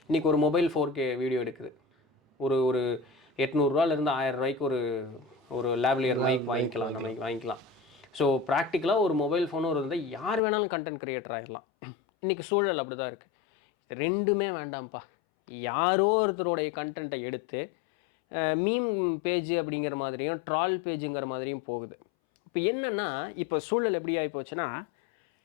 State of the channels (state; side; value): drops out; right; at 10.4 s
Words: இன்றைக்கி ஒரு மொபைல் 4K வீடியோ எடுக்குது, ஒரு 800 1000 ரூபாய்க்கு ஒரு லேவ்லியர் மைக் வாங்கிக்கலாம், நம்ம வாங்கிக்கலாம். ஸோ ப்ராக்டிக்கலாக ஒரு மொபைல் ஃபோனும் இருந்தால் யார் வேணாலும் கண்டென்ட் க்ரியேட்டர் ஆகிடலாம். இன்றைக்கி சூழல் அப்படி தான் இருக்குது. ரெண்டுமே வேண்டாம்ப்பா, யாரோ ஒருத்தருடைய கண்டென்ட்டை எடுத்து மீம் பேஜ் அப்படிங்கிற மாதிரியும் ட்ரால் பேஜுங்கிற மாதிரியும் போகுது. இப்போ என்னென்னா, இப்போ சூழல் எப்படி ஆகி போச்சுன்னா,